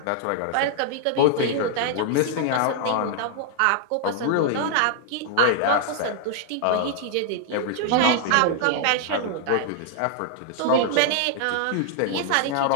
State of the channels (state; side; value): different; both; correlation -0.01